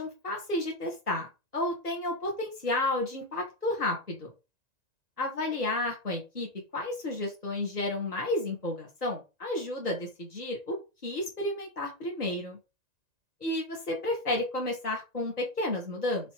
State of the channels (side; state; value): left; late; 1.9 ms